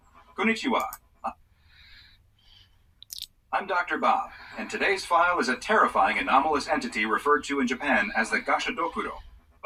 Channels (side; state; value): both; identical; correlation 1.00